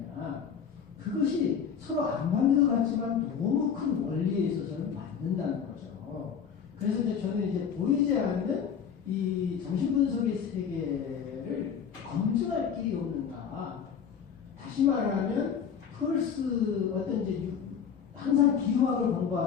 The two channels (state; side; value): quieter; right; 7.3 dB